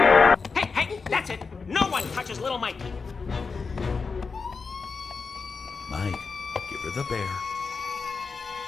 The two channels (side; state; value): right; quieter; 4.8 dB